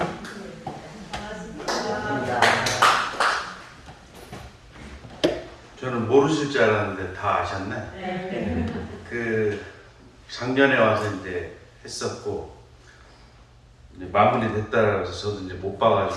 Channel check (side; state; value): both; identical; correlation 1.00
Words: 저는 모르실 줄 알았는데 다 아셨네. 그 작년에 와서 이제 했었고 이제 마무리 됐다라고 해서 저도 이제 못